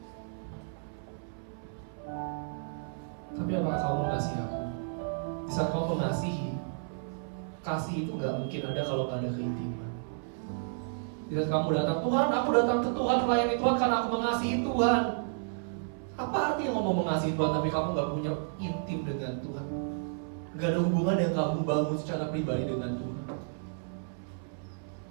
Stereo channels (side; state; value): left; silent; 57 dB below the other